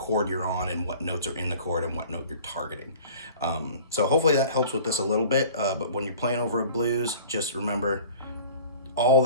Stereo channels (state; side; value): inverted; both; correlation -0.44